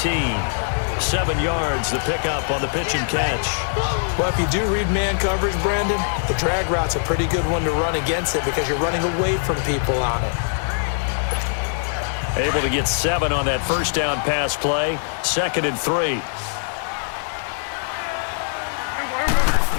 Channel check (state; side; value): silent; right; 63 dB below the other